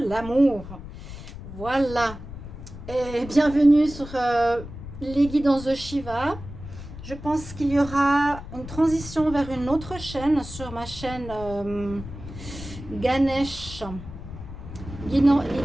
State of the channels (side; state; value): left; noise; rumble, 12 dB below the sound